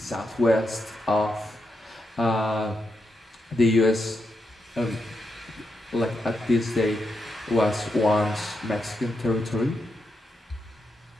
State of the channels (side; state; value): both; normal; correlation 0.84